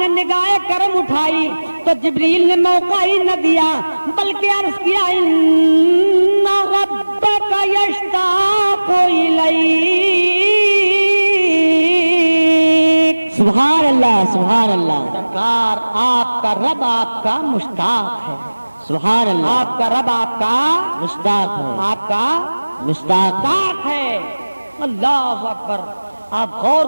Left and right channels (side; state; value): both; inverted; correlation -1.00